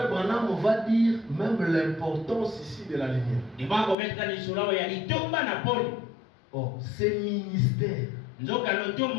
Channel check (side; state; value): right; drops out; at 4.0 s